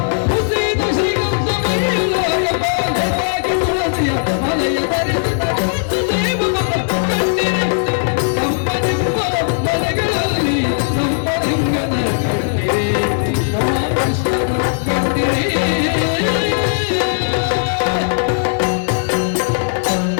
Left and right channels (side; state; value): right; silent; digital silence